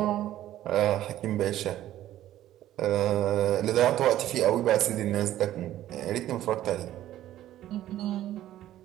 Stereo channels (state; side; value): quieter; left; 13.2 dB